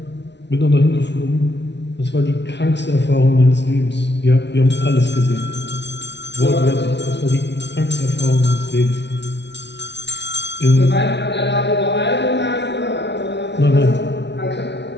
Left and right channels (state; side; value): late; right; 0.50 ms